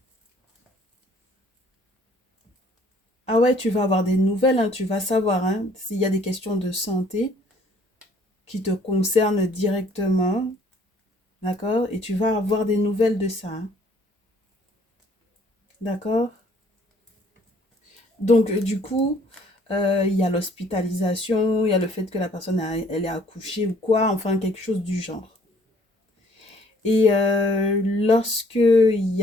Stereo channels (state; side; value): normal; both; correlation 0.60